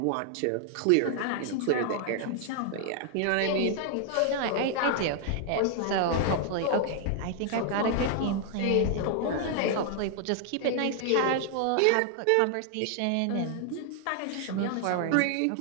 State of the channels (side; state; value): both; different; correlation 0.00